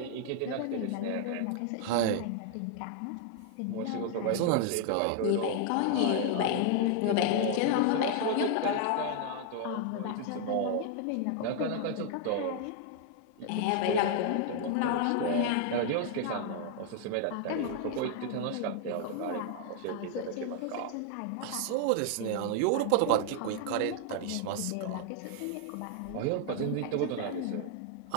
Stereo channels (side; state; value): both; different; correlation 0.00